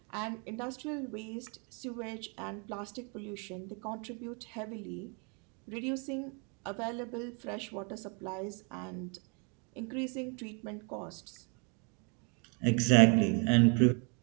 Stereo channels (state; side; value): quieter; left; 35.5 dB